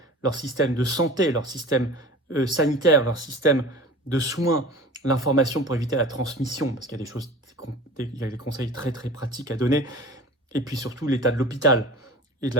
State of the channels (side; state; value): both; normal; correlation 0.38